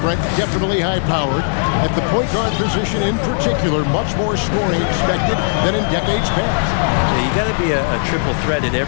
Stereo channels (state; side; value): silent; right; digital silence